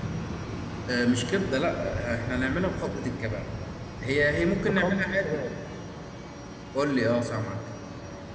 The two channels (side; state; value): both; identical; correlation 1.00